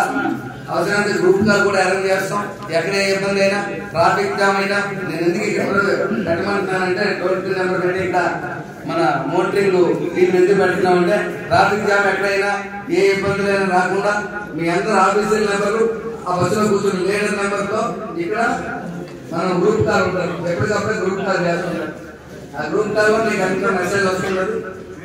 అవసరమైతే గ్రూప్ కాల్ కూడా అరేంజ్ చేస్తాం। ఎక్కడ ఇబ్బంది అయినా ట్రాఫిక్ జామ్ అయినా నేను ఎందుకు ఇక్కడ పెట్టమంటున్నానంటే టోల్ ఫ్రీ నెంబర్ పెట్టి ఇక్కడ మన మోటరింగ్ వీళ్ళు ఎందుకు పెడుతున్నామంటే ట్రాఫిక్ జామ్ ఎక్కడైనా ఏ ఇబ్బందులైనా రాకుండా మీ అందరు ఆఫీసర్ నెంబర్లు ఆ బస్సులో కూర్చుని లీడర్ నెంబర్ తో ఇక్కడ మనం గ్రూప్ కాల్ ఉంటారు, ఎప్పటికప్పుడు గ్రూప్ కాల్ చేస్తుంటారు। ఆ గ్రూప్ కాల్ వల్ల మీకు అంతా మెసేజ్ వస్తున్నది,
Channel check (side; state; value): both; identical; correlation 1.00